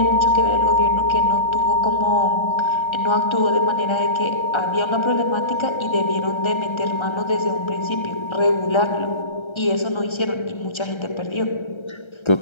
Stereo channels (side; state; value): right; late; 1.3 ms